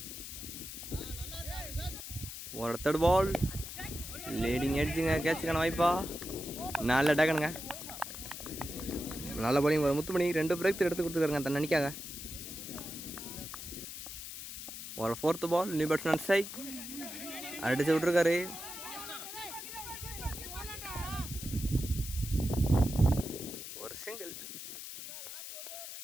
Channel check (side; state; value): left; noise; hiss, 9 dB below the sound